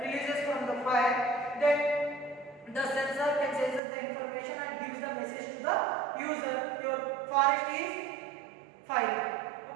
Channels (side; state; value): left; drops out; at 3.8 s